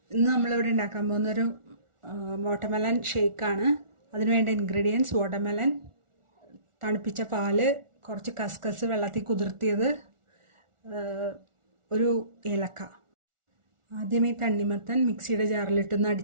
ഇന്ന് നമ്മളിവിടെ ഉണ്ടാക്കാൻ പോകുന്നൊരു വാട്ടർമെലൺ ഷേക്കാണ്. അതിനുവേണ്ട ഇൻഗ്രീഡിയൻസ് വാട്ടർമെലൺ, തണുപ്പിച്ച പാല്, കുറച്ച് കസ്കസ് വെള്ളത്തിൽ കുതിർത്തിയത്, ഒരു ഏലക്ക. ആദ്യം ഈ തണ്ണിമത്തൻ മിക്സിയുടെ ജാറിലിട്ടൊന്ന്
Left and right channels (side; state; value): left; late; 1.4 ms